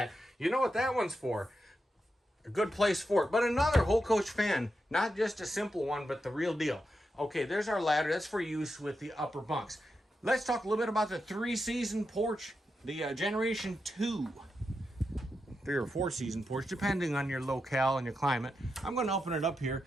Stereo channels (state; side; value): normal; both; correlation 0.87